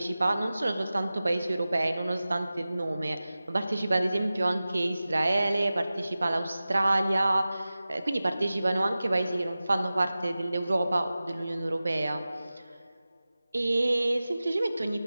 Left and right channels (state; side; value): inverted; both; correlation -0.96